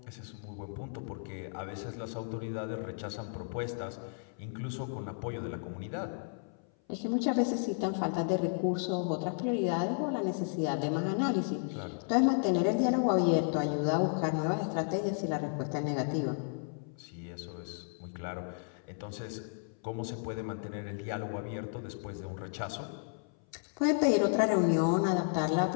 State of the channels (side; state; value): right; silent; 55 dB below the other